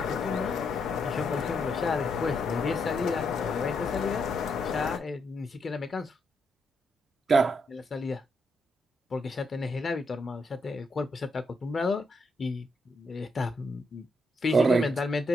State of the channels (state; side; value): normal; both; correlation 0.79